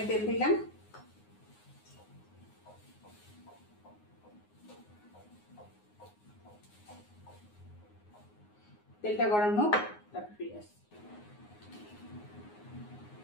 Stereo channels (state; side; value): late; right; 9.6 ms